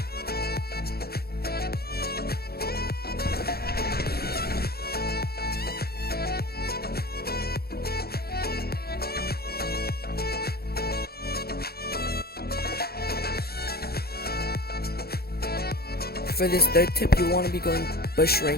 For this third tip, you want to be going bush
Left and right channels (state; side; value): late; right; 0.46 ms